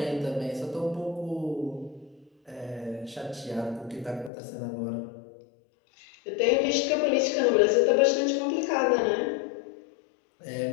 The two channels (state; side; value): drops out; right; at 4.3 s